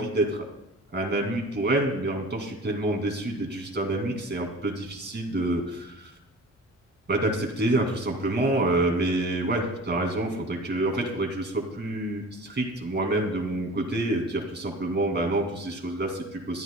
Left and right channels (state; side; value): normal; both; correlation 0.40